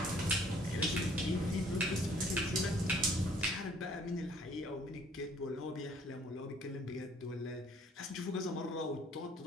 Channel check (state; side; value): normal; both; correlation 0.59